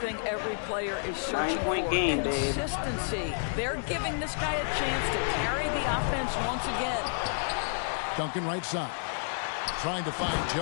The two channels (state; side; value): silent; right; 58 dB below the other